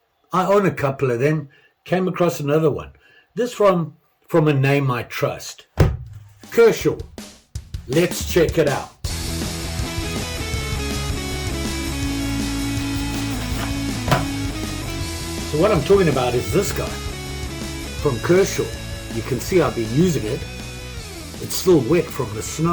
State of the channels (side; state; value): both; identical; correlation 1.00